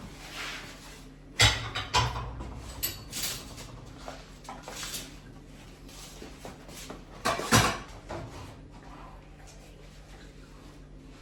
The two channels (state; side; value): identical; both; correlation 1.00